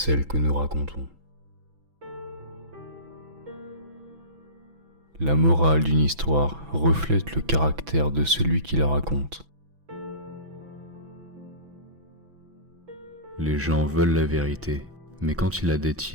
que nous racontons. La morale d'une histoire reflète le caractère de celui qui la raconte. Les gens veulent la vérité, mais quand ils la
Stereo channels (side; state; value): left; late; 6.0 ms